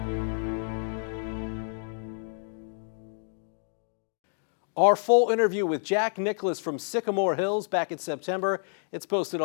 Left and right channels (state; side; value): silent; right; 59 dB below the other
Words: Our full interview with Jack Nicklaus from Sycamore Hills back in September. It's posted